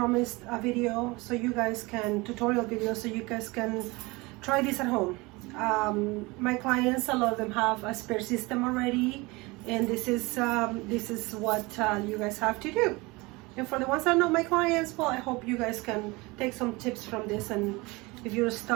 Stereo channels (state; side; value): quieter; left; 24.0 dB